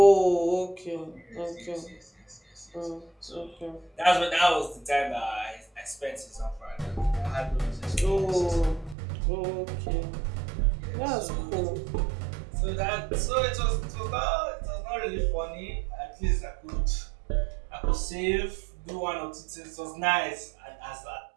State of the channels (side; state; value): left; drops out; at 9.0 s